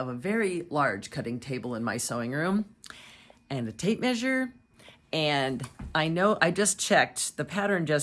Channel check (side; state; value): both; identical; correlation 1.00